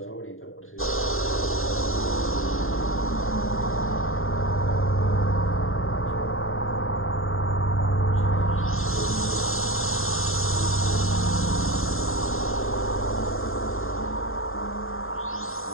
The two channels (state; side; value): late; right; 0.61 ms